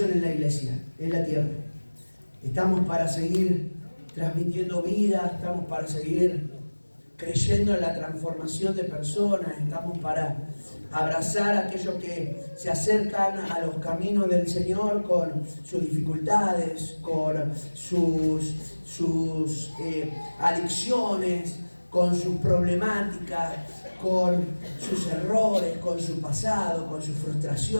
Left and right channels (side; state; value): both; inverted; correlation -1.00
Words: en la iglesia, en la tierra. Estamos para seguir transmitiendo vida, estamos para seguir creyendo en la transformación de personas, estamos para abrazar a aquellos que se acercan a los caminos del Señor con sus dificultades, con sus adicciones, con sus problemáticas, con sus errores, con su pasado, con sus